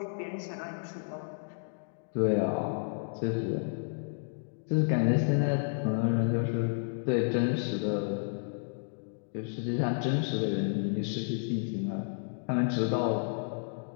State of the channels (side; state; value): right; silent; digital silence